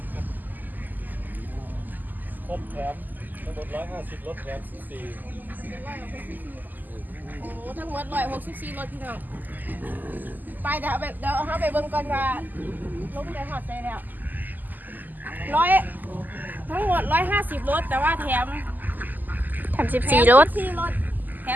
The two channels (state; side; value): late; left; 0.085 ms